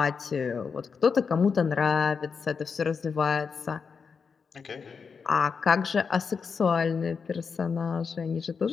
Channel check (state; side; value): quieter; right; 5.7 dB